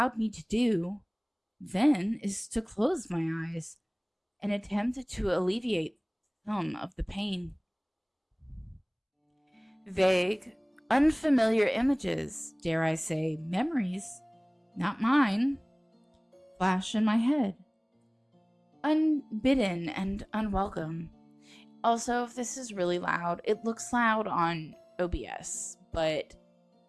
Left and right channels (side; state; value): both; identical; correlation 1.00